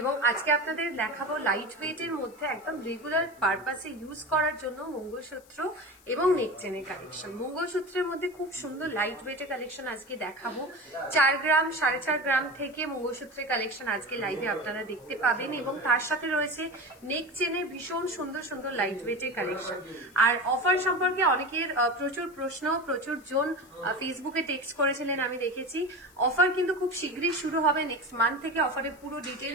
আজকে আপনাদের দেখাবো লাইট ওয়েটের মধ্যে একদম রেগুলার পারপাসে ইউজ করার জন্য মঙ্গলসূত্র এবং নেকচেনের কালেকশন। মঙ্গলসূত্রের মধ্যে খুব সুন্দর লাইট ওয়েটের কালেকশন আজকে দেখাবো। 4 গ্রাম 4.5 গ্রাম থেকে মঙ্গলসূত্রের কালেকশন আজকে লাইভে আপনারা দেখতে পাবেন এবং তার সাথে রয়েছে নেকচেনের ভীষণ সুন্দর সুন্দর লাইট ওয়েটের কালেকশন। আর অফার সম্পর্কে অনেকের প্রচুর প্রশ্ন, প্রচুর জন ফেসবুকে টেক্সট করেছিলেন, আমি দেখেছি। অফার কিন্তু খুব শীঘ্রই শুরু হবে, নেক্সট মান্থ থেকে অফারের পুরো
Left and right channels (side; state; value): left; noise; hiss, 27 dB below the sound